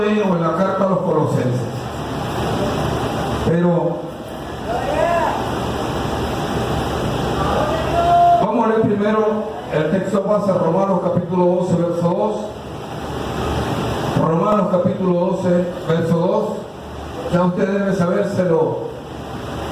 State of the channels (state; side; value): identical; both; correlation 1.00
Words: en la carta a los Colosenses, pero vamos a leer primero el texto base, Romanos capítulo 12, verso 2. Romanos capítulo 12, verso 2. Ya usted debe sabérselo